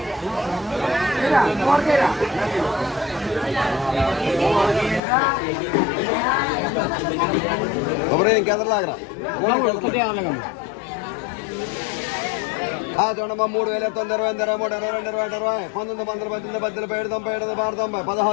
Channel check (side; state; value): right; drops out; at 5.0 s